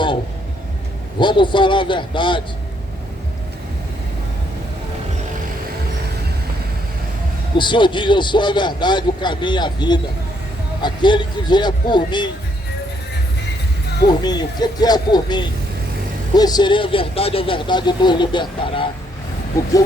vamos falar a verdade. O Senhor diz: eu sou a verdade, o caminho e a vida. Aquele que vier por mim, o que é por mim? Conhecerei a verdade nos libertará. Porque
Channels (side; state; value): both; normal; correlation 0.71